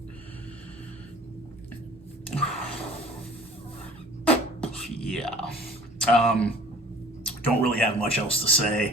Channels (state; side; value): normal; both; correlation 0.48